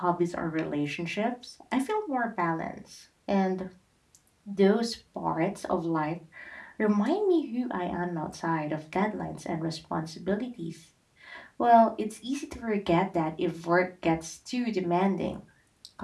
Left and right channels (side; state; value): both; identical; correlation 1.00